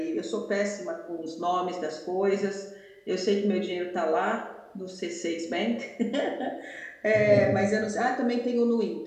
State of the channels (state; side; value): identical; both; correlation 1.00